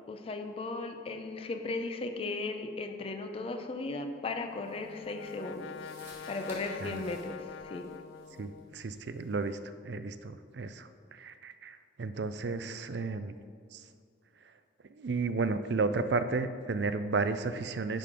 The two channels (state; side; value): normal; both; correlation 0.27